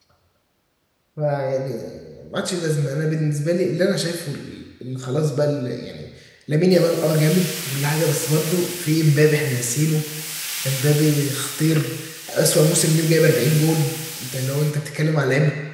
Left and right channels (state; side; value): identical; both; correlation 1.00